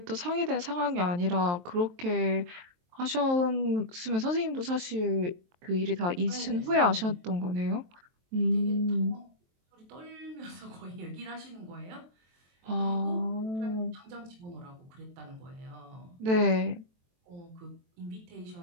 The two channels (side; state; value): left; late; 23 ms